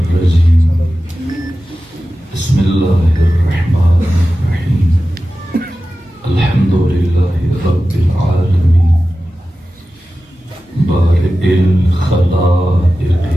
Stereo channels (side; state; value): both; normal; correlation 0.94